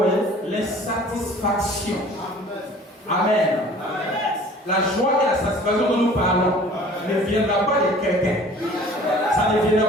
l'insatisfaction. Amen. La joie et la satisfaction dont nous parlons ne viendra pas de quelqu'un. Ça ne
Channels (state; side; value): normal; both; correlation 0.48